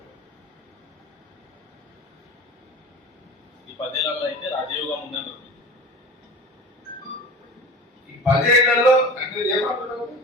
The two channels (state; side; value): normal; both; correlation 0.36